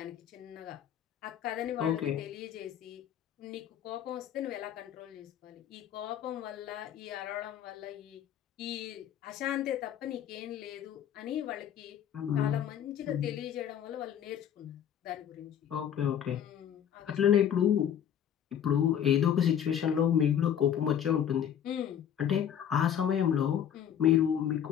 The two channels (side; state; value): right; quieter; 9.4 dB